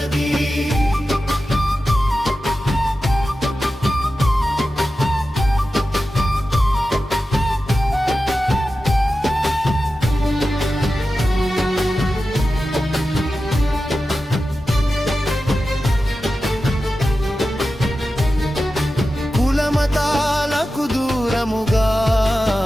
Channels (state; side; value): normal; both; correlation 0.93